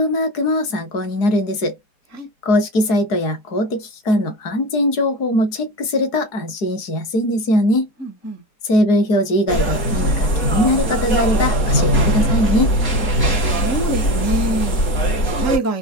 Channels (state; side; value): late; right; 4.7 ms